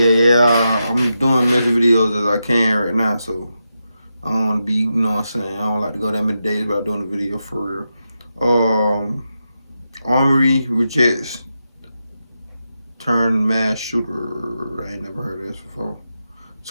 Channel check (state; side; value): inverted; both; correlation -0.87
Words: I'm doing as many videos as I can right now. So I don't want to be, you know what I'm saying. I don't like to go that many days without doing a video for real. Armory rejects turned mass shooter. I ain't never heard of this before.